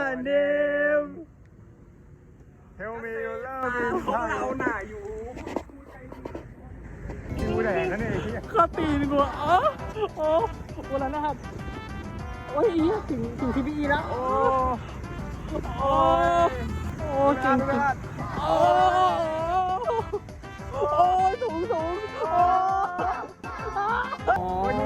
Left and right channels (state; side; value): identical; both; correlation 1.00